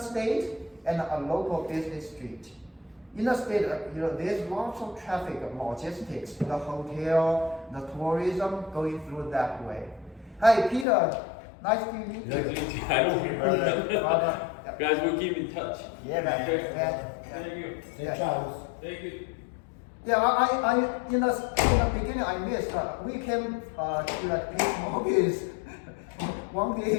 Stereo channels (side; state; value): right; drops out; at 10.9 s